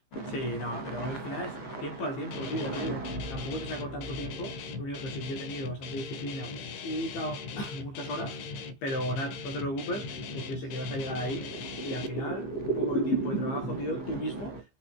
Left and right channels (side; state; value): right; late; 15 ms